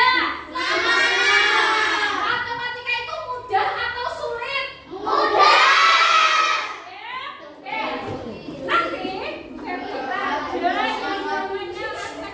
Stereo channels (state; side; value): identical; both; correlation 1.00